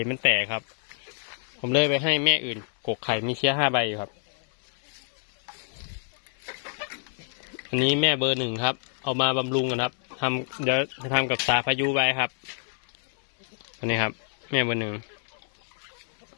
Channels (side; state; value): right; silent; 60 dB below the other